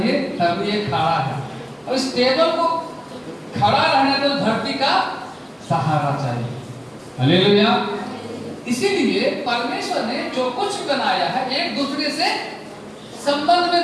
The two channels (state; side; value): identical; both; correlation 1.00